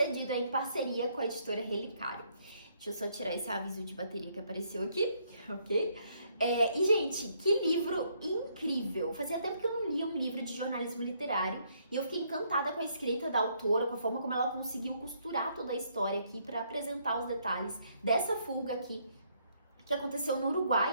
em parceria com a editora Relicário. Deixa eu só tirar esse aviso de bateria que apareceu aqui, ok? E, gente, que livro incrível! Fazia tempo que eu não lia um livro de jornalismo literário e eu fiquei encantada com a escrita da autora, com a forma como ela conseguiu costurar toda a história aqui para apresentar os detalhes dessa fuga aqui, que aconteceu no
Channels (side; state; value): both; inverted; correlation -0.70